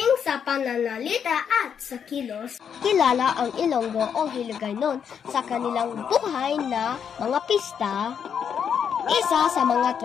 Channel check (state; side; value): quieter; right; 7.7 dB